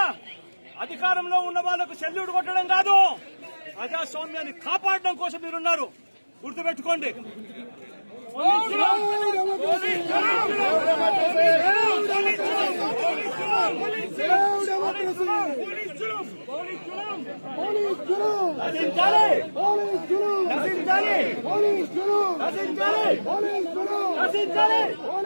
అధికారంలో ఉన్న వాళ్లకు సెల్యూట్ కొట్టడం కాదు, ప్రజాస్వామ్యాన్ని కాపాడడం కోసం మీరున్నారు. గుర్తుపెట్టుకోండి.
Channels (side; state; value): both; inverted; correlation -1.00